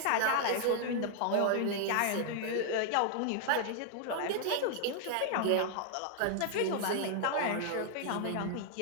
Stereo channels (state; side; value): different; both; correlation -0.01